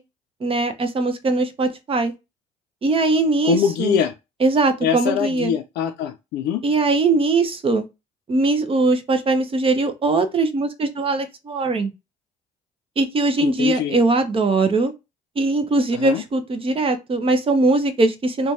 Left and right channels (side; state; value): both; normal; correlation 0.50